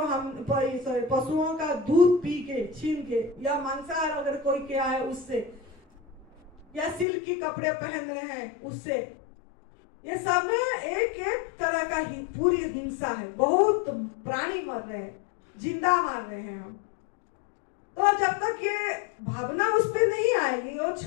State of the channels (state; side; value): drops out; right; at 7.1 s